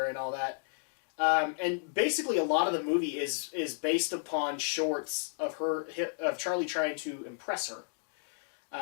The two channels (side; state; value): right; silent; digital silence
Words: and all that. And basically a lot of the movie is based upon shorts of Charlie trying to impress her.